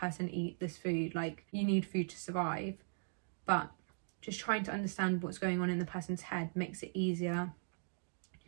eat this food? Like, you need food to survive. But just trying to understand what's going on in the person's head makes it easier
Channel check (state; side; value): silent; left; digital silence